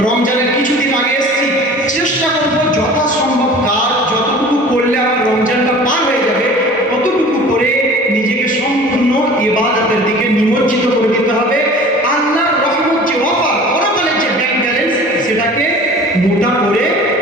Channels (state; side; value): normal; both; correlation 0.43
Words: রমজানের কিছুদিন আগে এসেছি, চেষ্টা করবো যথাসম্ভব কাজ যতটুকু করলে আমার রমজানটা পার হয়ে যাবে ততটুকু করে নিজেকে সম্পূর্ণ ইবাদতের দিকে নিমজ্জিত করে দিতে হবে। আল্লাহর রহমত যে অফার, পরকালের যে ব্যাংক ব্যালেন্স, সেটাকে মোটা করে